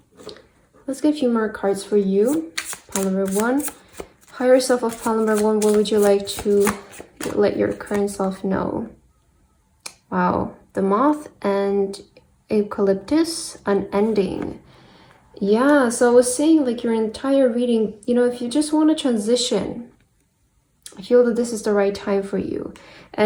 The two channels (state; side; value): identical; both; correlation 1.00